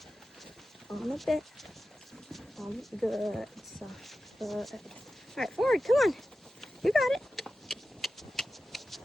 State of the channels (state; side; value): normal; both; correlation 0.93